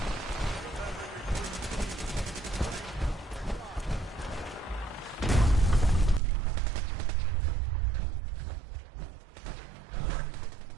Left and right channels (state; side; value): drops out; left; at 6.2 s